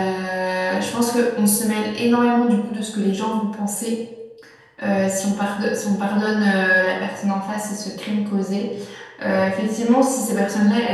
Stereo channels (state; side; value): identical; both; correlation 1.00